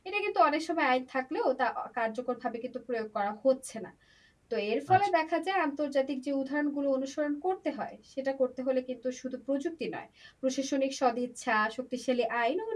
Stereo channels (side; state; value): both; identical; correlation 1.00